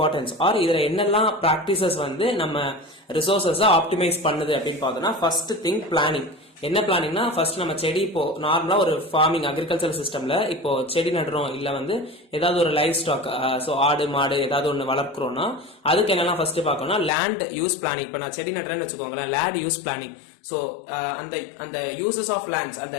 ஆர் இதுல என்னெல்லாம் பிராக்டிசஸ் வந்து நம்ம ரிசோர்சஸ ஆப்டிமைஸ் பண்ணுது அப்படின்னு பார்த்தோம்னா ஃபர்ஸ்ட் திங் பிளானிங். என்ன பிளானிங்னா ஃபர்ஸ்ட் நம்ம செடி இப்போ நார்மலா ஒரு ஃபார்மிங் அக்ரிகல்ச்சர் சிஸ்டம்ல இப்போ செடி நடுறோம் இல்ல வந்து ஏதாவது ஒரு லைஃப் ஸ்டாக் சோ ஆடு மாடு ஏதாவது ஒன்று வளர்க்குறோம்னா அதுக்கு என்னெல்லாம் ஃபர்ஸ்ட் பார்க்கணும்னா லேண்ட் யூஸ் பிளானிங். இப்போ நான் செடி நடுறேன்னு வச்சுக்கோங்களேன், லேண்ட் யூஸ் பிளானிங். சோ அந்த யூசஸ் ஆஃப் லேண்ட்ஸ், அந்த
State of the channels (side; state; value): right; drops out; at 17.1 s